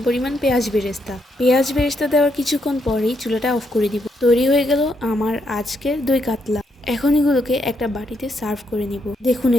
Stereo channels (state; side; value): normal; both; correlation 0.78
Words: পরিমাণ পেঁয়াজ বেরেস্তা। পেঁয়াজ বেরেস্তা দেওয়ার কিছুক্ষণ পরেই চুলাটা অফ করে দিব। তৈরি হয়ে গেল আমার আজকের দই কাতলা। এখন এগুলোকে একটা বাটিতে সার্ভ করে নিব। দেখুন,